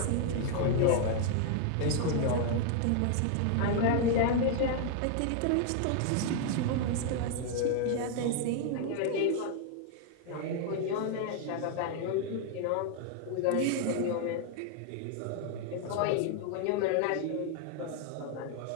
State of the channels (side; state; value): both; different; correlation 0.00